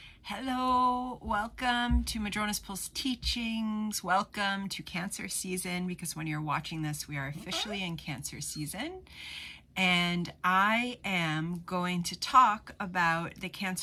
Hello, welcome to Madrona's Pulse Teachings. Welcome to Cancer season, because when you're watching this, we are officially in Cancer season. And I am going to talk about the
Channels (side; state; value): both; identical; correlation 1.00